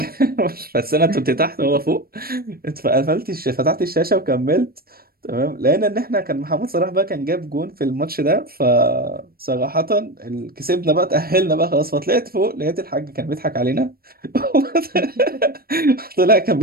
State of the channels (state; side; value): late; left; 0.44 ms